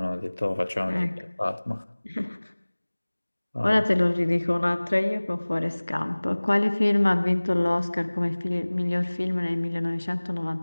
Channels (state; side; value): inverted; both; correlation -1.00